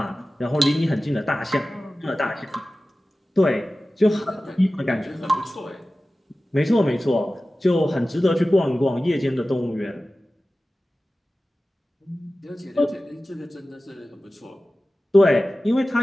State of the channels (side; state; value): both; normal; correlation 0.96